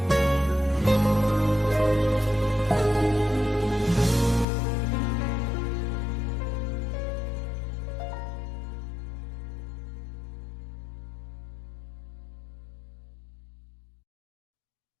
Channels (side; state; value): right; drops out; at 4.5 s